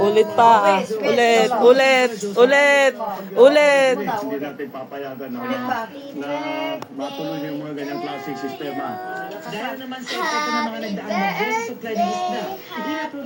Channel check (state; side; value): identical; both; correlation 1.00